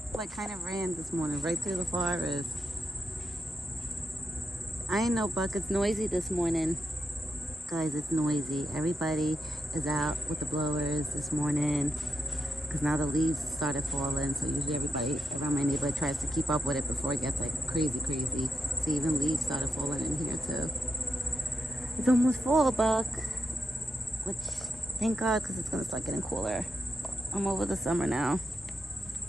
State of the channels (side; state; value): both; normal; correlation 0.85